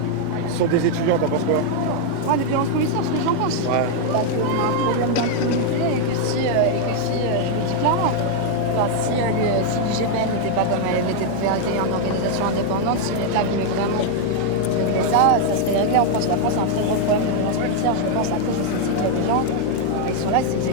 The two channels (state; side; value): different; both; correlation 0.00